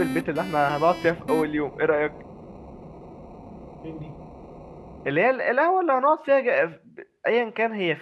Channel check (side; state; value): both; identical; correlation 1.00